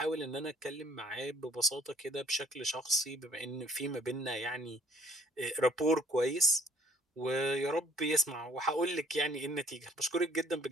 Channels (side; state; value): both; normal; correlation 0.60